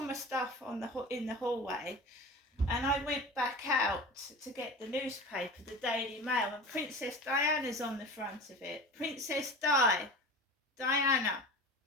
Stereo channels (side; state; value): both; normal; correlation 0.34